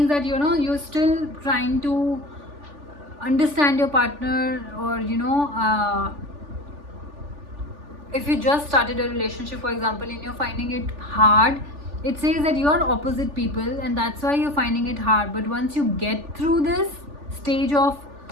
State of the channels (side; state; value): left; late; 3.4 ms